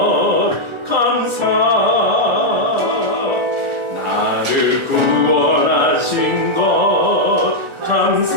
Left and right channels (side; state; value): left; late; 1.4 ms